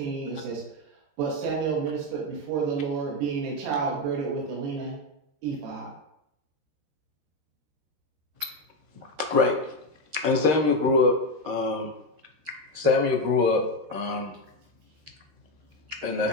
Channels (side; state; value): left; late; 13 ms